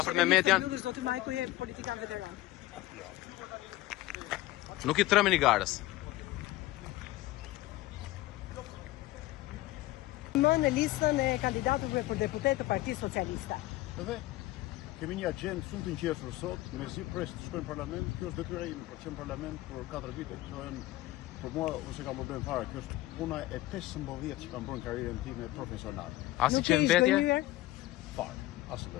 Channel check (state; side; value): quieter; right; 17.3 dB